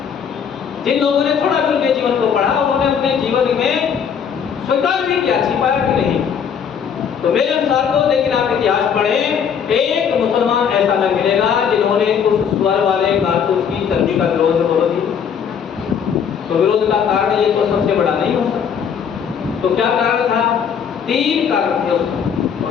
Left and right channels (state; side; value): quieter; right; 7.5 dB